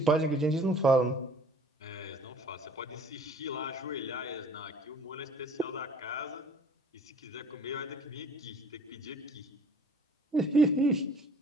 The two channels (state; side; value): normal; both; correlation 0.53